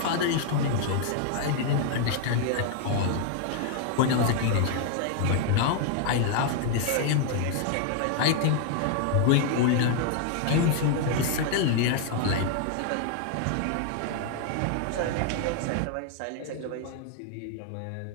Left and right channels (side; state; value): both; different; correlation 0.00